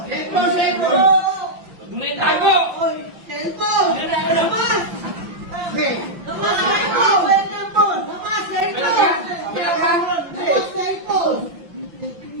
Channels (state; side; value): late; left; 5.8 ms